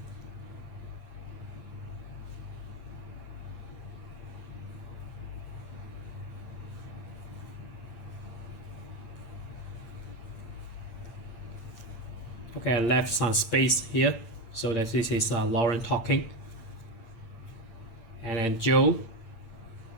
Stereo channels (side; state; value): right; late; 8.7 ms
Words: Okay, I left some space here so that this is Lauren talking. And then Joe